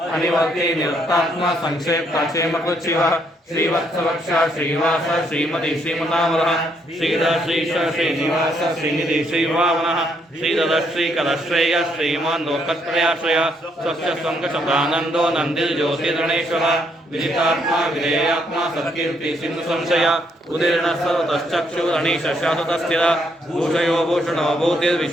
अनिवर्ति निरस्तात्मा संक्षेप्ता क्षेमकृच्छिवः श्रीवत्सवक्षा श्रीवास श्रीमती श्रीमनामरः श्रीधर श्रीश श्रीनिवास श्रीनिधि श्रीभावनः श्रीधर श्रीकलश्रेय श्रीमान् लोकत्रयाश्रय स्वच्छ संकशतानन्दो नन्दिर्ज्योतिर्गणेश्वरः विदितात्मा विधेयात्मा सत्कीर्ति सिंधु संशय उदीर्ण सर्वतश्चक्षुरणीश शाश्वतस्थिर भूषयो भूषणो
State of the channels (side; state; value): both; normal; correlation 0.72